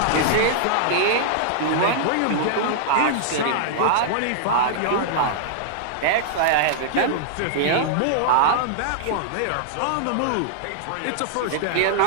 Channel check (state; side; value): different; both; correlation -0.01